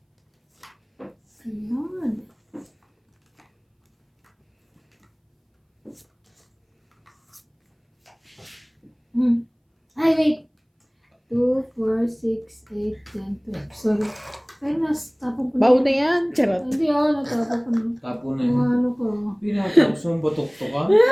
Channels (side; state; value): both; identical; correlation 1.00